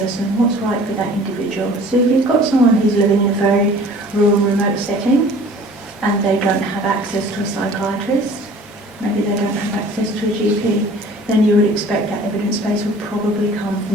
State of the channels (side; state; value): both; normal; correlation 0.48